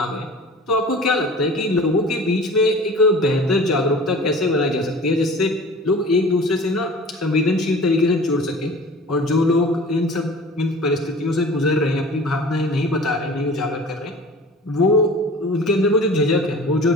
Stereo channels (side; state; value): both; normal; correlation 0.42